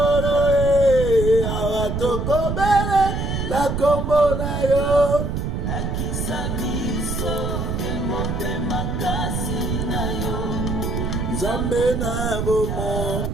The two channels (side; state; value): right; noise; rumble, 2 dB below the sound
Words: awa tokobele la kombo na yo lakisa biso emote makasi na yo nzambe na bomo.